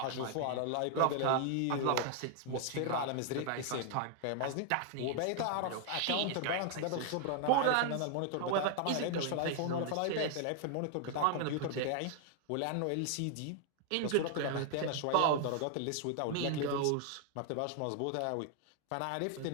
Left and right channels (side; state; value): both; different; correlation 0.00